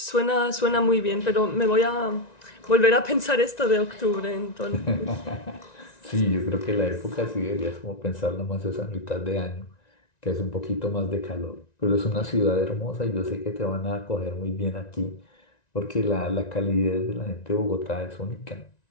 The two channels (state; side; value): late; right; 1.9 ms